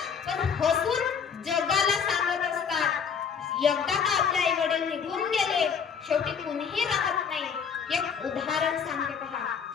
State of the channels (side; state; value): right; quieter; 6.7 dB